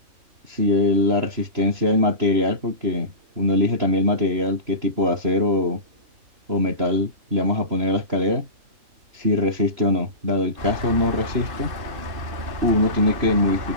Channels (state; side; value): late; left; 3.0 ms